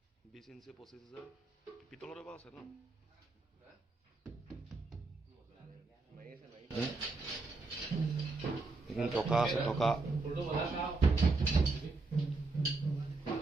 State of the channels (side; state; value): left; quieter; 3.6 dB